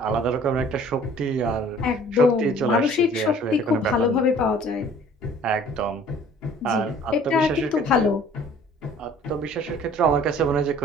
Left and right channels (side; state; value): both; normal; correlation 0.52